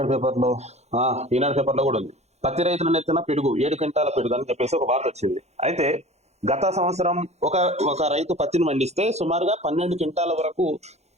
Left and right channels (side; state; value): left; late; 0.32 ms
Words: పేపర్లో కూడా ఉంది. పత్తి రైతుల నెత్తిన పిడుగు 7 క్వింటాల పిడుగు అని చెప్పేసి ఒక వార్త వచ్చింది. అయితే గత సంవత్సరం ఒక రైతు పత్తిని పండిస్తే సుమారుగా 12 క్వింటాల వరకు